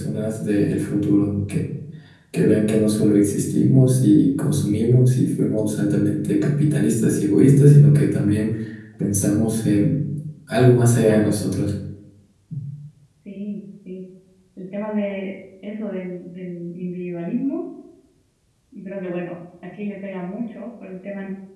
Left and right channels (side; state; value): both; identical; correlation 1.00